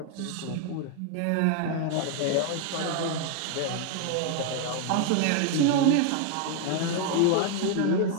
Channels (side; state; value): both; different; correlation 0.00